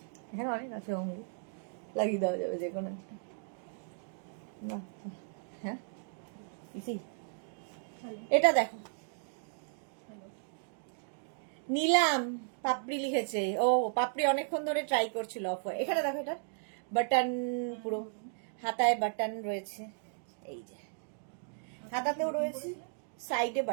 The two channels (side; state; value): left; silent; digital silence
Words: হ্যাঁ অনেক আছে, অঙ্গুর লাগিয়ে দেওয়া যাবে যে কোনো একটা। হ্যাঁ এটা দেখো, নিলাম পাপড়ি লিখেছে। ও পাপড়ি অনেকক্ষণ ধরে ট্রাই করছিল অফ। এখানে দেখো, এটা বাটন, পুরো হাতায় বাটন রয়েছে, এই যে হাতাতেও রয়েছে, সাইডে